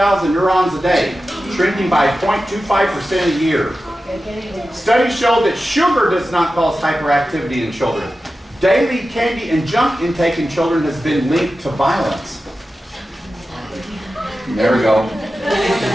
neurons a day, shrinking by 0.25% a year. Studies show that sugar does not cause hyperactivity in children. Daily candy and junk intake in children has been linked to violence. There we go.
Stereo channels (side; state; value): both; normal; correlation 0.93